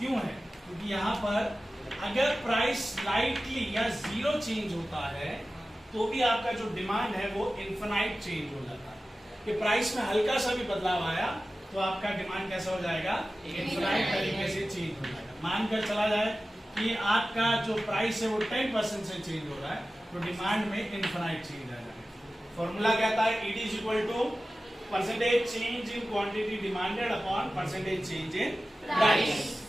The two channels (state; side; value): normal; both; correlation 0.95